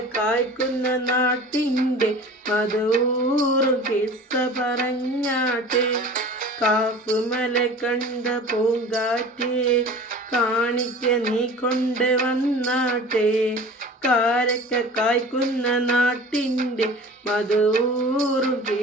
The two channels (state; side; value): normal; both; correlation 0.40